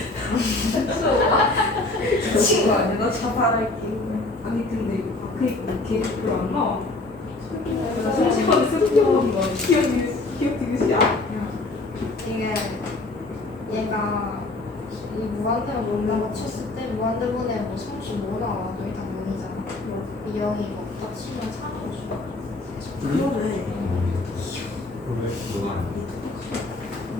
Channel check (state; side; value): quieter; right; 3.0 dB